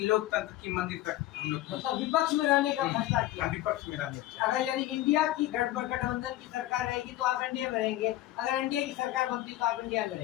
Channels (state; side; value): quieter; right; 15.2 dB